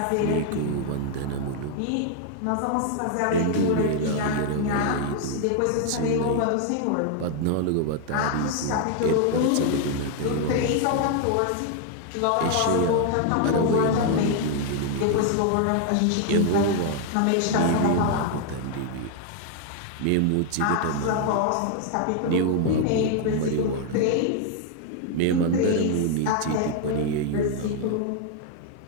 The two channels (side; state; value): both; different; correlation 0.00